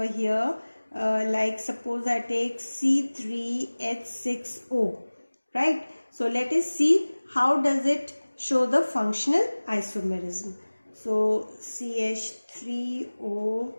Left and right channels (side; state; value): both; inverted; correlation -1.00